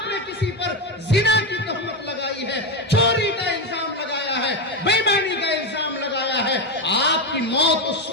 نے کسی پر زنا کی تہمت لگائی ہے، چوری کا الزام لگایا ہے، بے ایمانی کا الزام لگایا ہے، آپ کی موت اس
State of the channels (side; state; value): both; normal; correlation 0.11